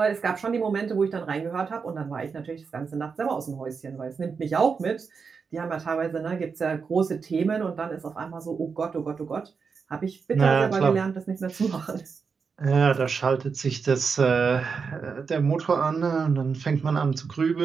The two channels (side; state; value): left; quieter; 5.5 dB